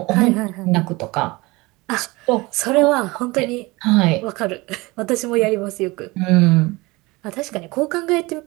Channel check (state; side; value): quieter; left; 22.9 dB